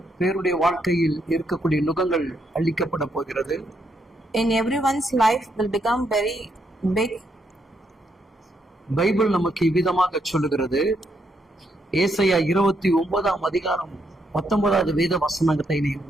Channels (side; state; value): both; normal; correlation 0.77